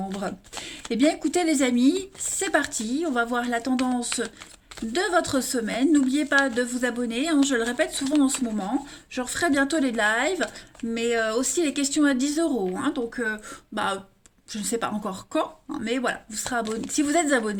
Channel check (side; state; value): both; identical; correlation 1.00